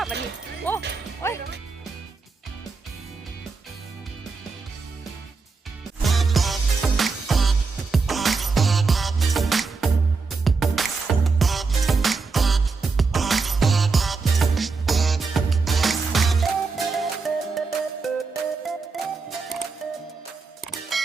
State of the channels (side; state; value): left; quieter; 4.5 dB